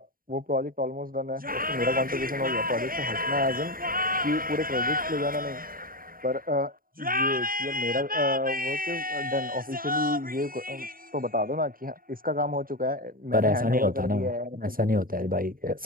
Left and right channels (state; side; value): late; left; 0.41 ms